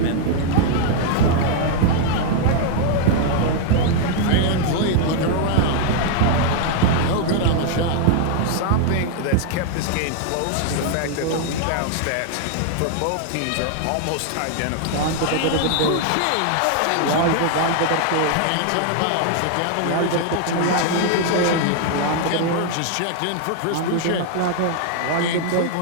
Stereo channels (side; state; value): both; different; correlation 0.00